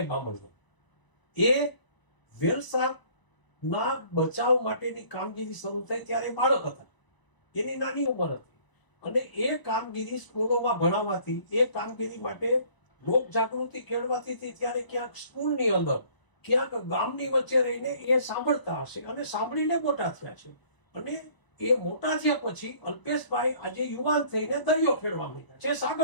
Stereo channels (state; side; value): late; right; 1.0 ms